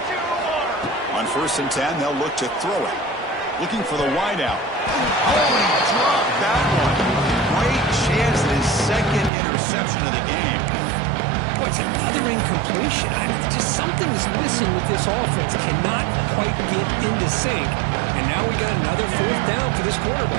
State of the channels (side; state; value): left; drops out; at 9.3 s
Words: On first and 10, they'll look to throw it. Looking for the wideout. Oh, he dropped that one. Great chance at his second interception of the game. Boy, it's another incompletion. Just something's missing with this offense. Cannot quite get into sync. And now we got another fourth down for this